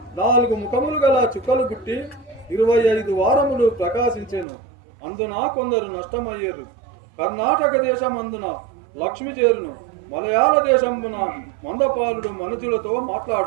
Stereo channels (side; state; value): left; drops out; at 4.5 s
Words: 4 ముఖములు గల చుక్కలు పుట్టి 25 వారములు ప్రకాశించెను. అందున కొందరు నష్టమయ్యేరు. కర్ణాటక దేశం అందున లక్ష్మి చేరును. మలయాళ దేశమున మందపాలుడు మనుజులతో